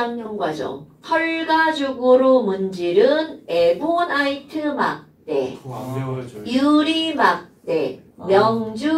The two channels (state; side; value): identical; both; correlation 1.00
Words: 과정 털가죽으로 문지른 에보나이트 막대, 그거 안 배워요 저희. 유리 막대, 명주